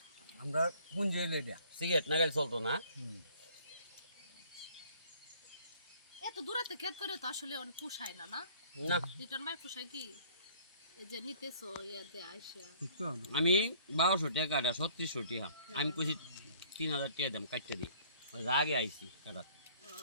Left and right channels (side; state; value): both; inverted; correlation -0.55